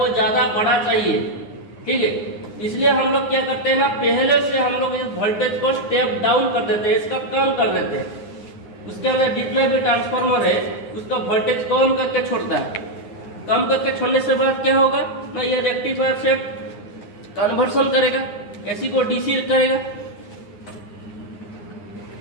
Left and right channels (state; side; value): late; right; 9.7 ms